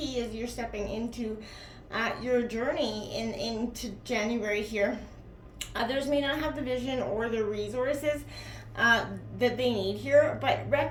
as you're stepping into your journey into January here. Others may not have the vision or the resources that they need here, but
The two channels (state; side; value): identical; both; correlation 1.00